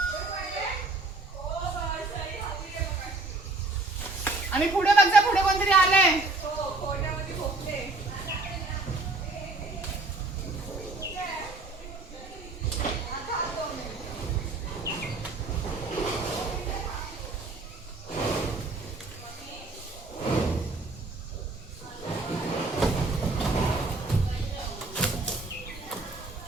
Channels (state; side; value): quieter; left; 3.1 dB